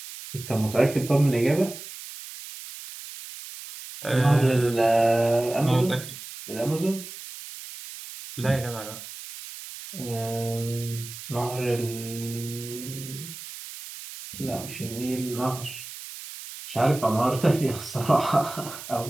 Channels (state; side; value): noise; right; hiss, 12 dB below the sound